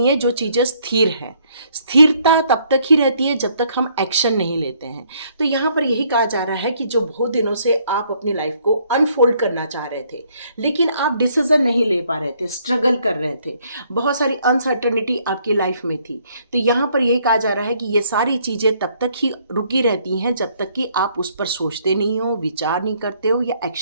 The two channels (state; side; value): inverted; both; correlation -0.66